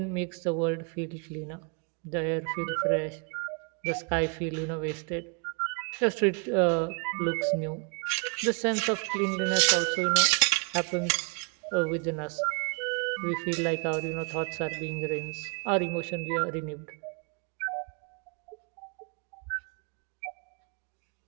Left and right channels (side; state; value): left; quieter; 34.0 dB